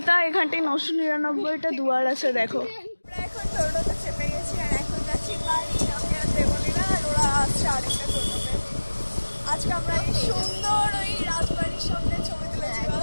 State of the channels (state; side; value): inverted; both; correlation -1.00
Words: এখানটায় 999টা দুয়ার আছে। দেখো আমরা এখন টোটোতে চেপে গেছি, আর এখন যাচ্ছি বাড়ি। আমি আর দেবলীনা, আর ওরা আসছে আরেকটা টোটোতে। আজকে আমরা এই সুন্দর ওই রাজবাড়ির সামনে ছবি তুলেছি,